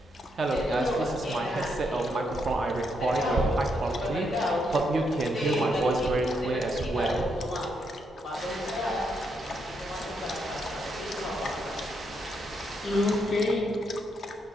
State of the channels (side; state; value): both; normal; correlation 0.78